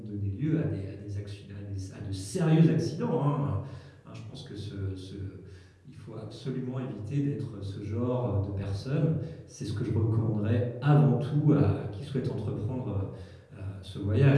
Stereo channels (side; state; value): both; identical; correlation 1.00